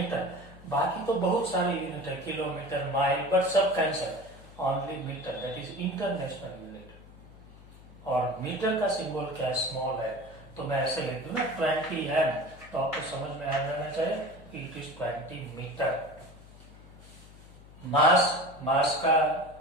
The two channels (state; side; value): noise; left; hum, 20 dB below the sound